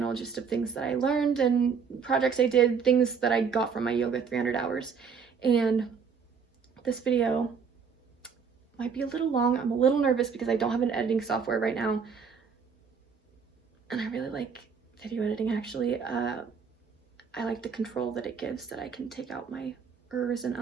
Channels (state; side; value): quieter; left; 6.1 dB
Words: just of things that I learned and projects I did, things that I got from my yoga 300 hours. And this video might be a little long. I'm a little nervous because I don't have an editing software right now. And I really like video editing, actually. I like the control that it gives, that I can take out my ers and